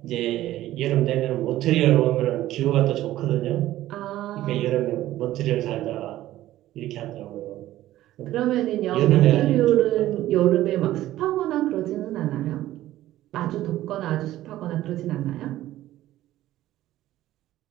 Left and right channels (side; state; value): left; quieter; 14.6 dB